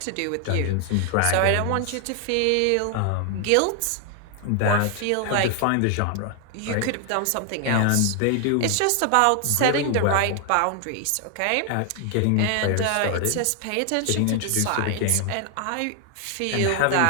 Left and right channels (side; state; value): both; different; correlation 0.00